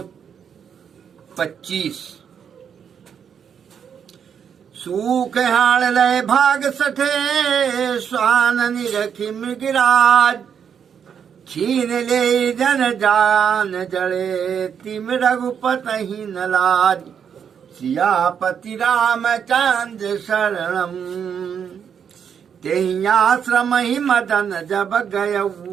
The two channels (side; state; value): left; quieter; 7.7 dB